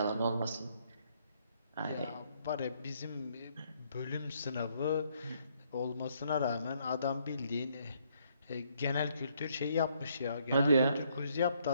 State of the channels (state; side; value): inverted; both; correlation -0.70